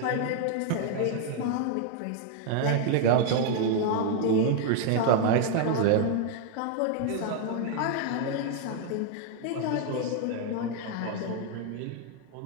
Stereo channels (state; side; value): different; both; correlation 0.00